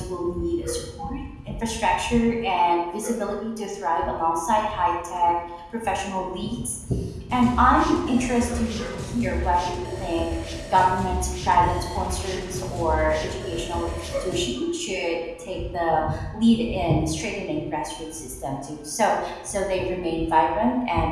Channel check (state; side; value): identical; both; correlation 1.00